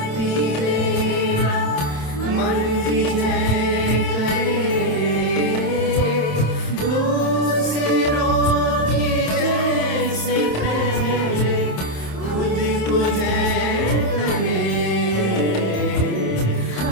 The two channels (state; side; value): late; right; 27 ms